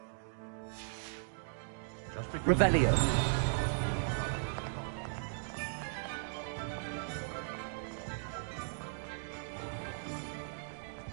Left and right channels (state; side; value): silent; left; digital silence